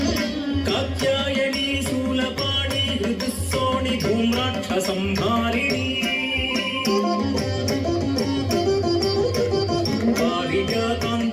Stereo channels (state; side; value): identical; both; correlation 1.00